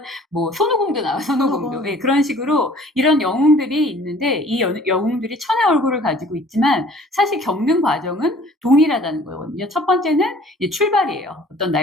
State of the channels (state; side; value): normal; both; correlation 0.52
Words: 뭐 손오공도 나와요. 손오공도. 예, 그런 식으로 이런 영웅들이 있는데 이 영웅들이 천의 얼굴을 가지고 있지만 사실 겪는 과정은 동일하다는 거거든요. 첫 번째는 이제 출발이에요. 어떤